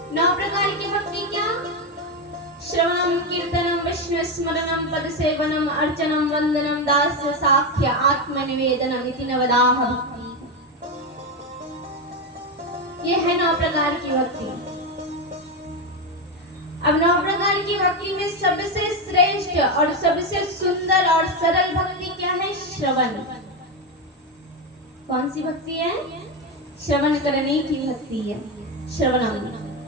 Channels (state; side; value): normal; both; correlation 0.11